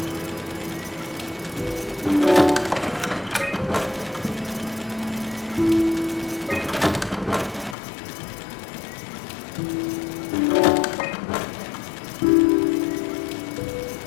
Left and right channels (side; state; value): right; drops out; at 7.8 s